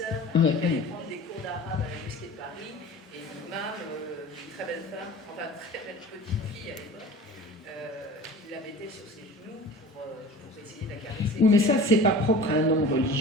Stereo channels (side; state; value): both; normal; correlation 0.40